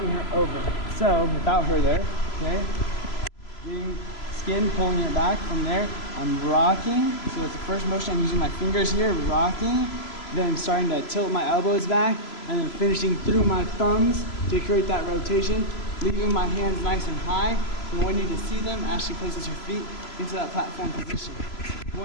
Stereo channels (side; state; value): right; late; 3.0 ms